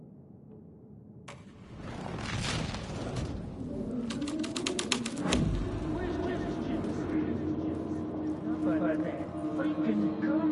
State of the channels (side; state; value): both; identical; correlation 1.00